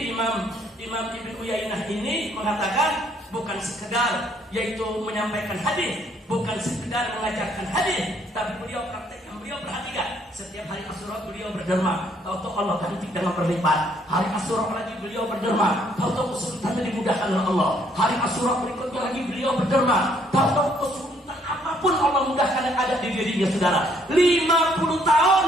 Imam Ibnu Uyainah ini mengatakan bukan sekedar yaitu menyampaikan hadis, bukan sekedar mengajarkan hadis, tapi beliau praktekkan, beliau perhatikan. Setiap hari Asyura beliau berderma, tahu-tahu Allah ganti dengan berlipat. Hari Asyura lagi beliau berderma, tahu-tahu kesulitannya dimudahkan oleh Allah. Hari Asyura berikutnya lagi beliau berderma, tahu-tahu kesulitan apapun Allah mudahkan yang ada di dirinya, saudara. 50 tahun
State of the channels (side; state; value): both; normal; correlation 0.66